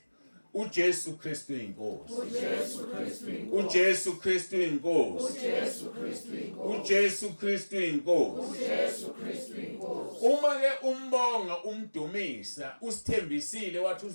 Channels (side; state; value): both; inverted; correlation -1.00